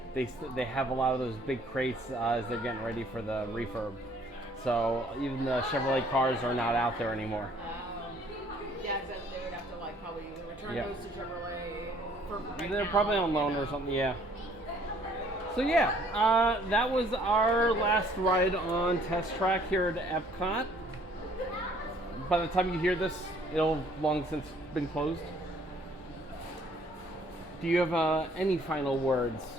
they have a lot of those big crates as they're getting ready for the refurb. So even the Chevrolet cars are not out there anymore. Yeah, except they would have to like probably return those to Chevrolet for right They're now, probably on loan or something, yeah. So yeah, that was our last ride on Test Track here at Epcot. By the time you hear this, it'll long since been closed. Do you have any final words?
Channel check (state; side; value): normal; both; correlation 0.60